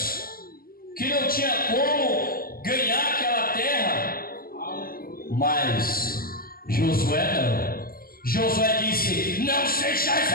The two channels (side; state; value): right; late; 0.42 ms